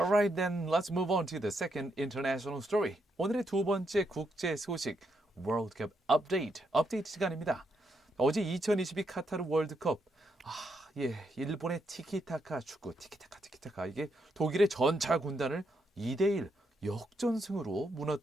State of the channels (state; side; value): normal; both; correlation 0.79